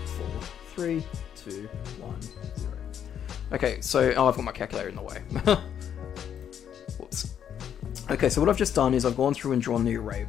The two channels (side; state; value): right; quieter; 9.1 dB